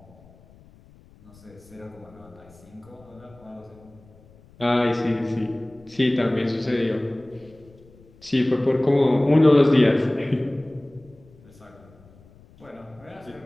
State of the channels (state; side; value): noise; left; rumble, 26 dB below the sound